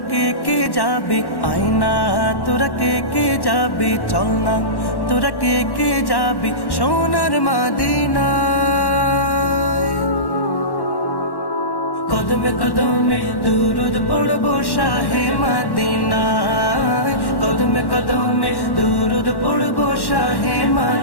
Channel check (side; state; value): right; late; 1.1 ms